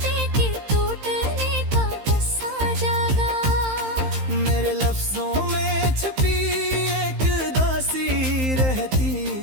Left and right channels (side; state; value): left; late; 15 ms